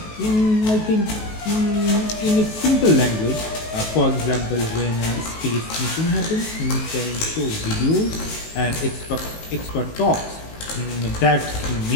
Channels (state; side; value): late; right; 19 ms